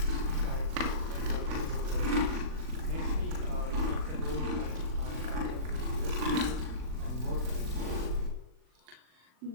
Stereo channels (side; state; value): left; late; 39 ms